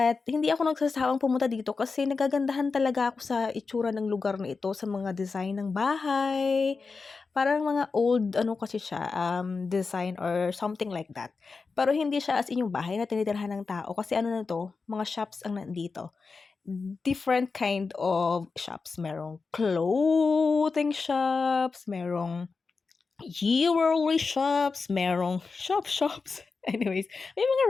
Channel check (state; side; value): quieter; right; 4.5 dB